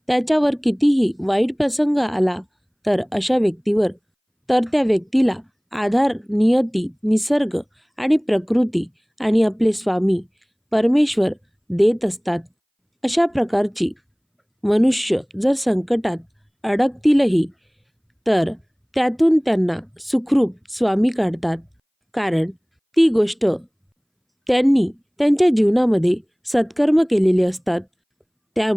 त्याच्यावर कितीही वाईट प्रसंग आला तर त्या व्यक्तीला आधार नियती, निसर्ग आणि प्रकृती आणि आपले स्वामी परमेश्वर देत असतात. अशा प्रकारची मनुष्य जर संकटात अडकतीलही तर त्यातून त्यांना सुखरूप स्वामी काढतात, कारण ती गोष्ट त्यांनी त्यांच्या जीवनामध्ये सत्कर्म केलेले असतात.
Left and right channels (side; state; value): both; identical; correlation 1.00